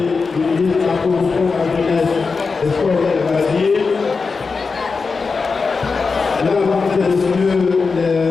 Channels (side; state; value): right; quieter; 4.6 dB